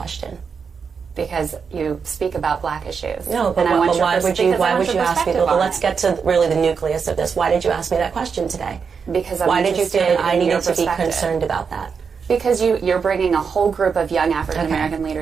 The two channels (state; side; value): quieter; left; 5.9 dB